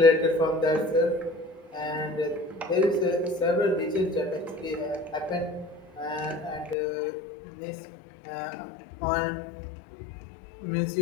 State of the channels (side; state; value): right; drops out; at 6.8 s